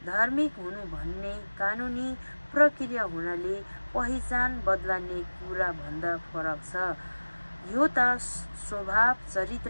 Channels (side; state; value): both; inverted; correlation -1.00